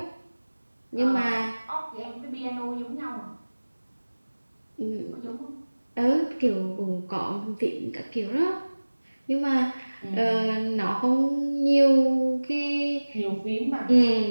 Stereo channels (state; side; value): inverted; both; correlation -1.00